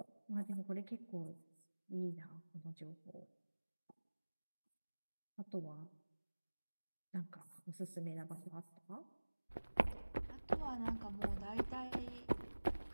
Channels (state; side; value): inverted; both; correlation -1.00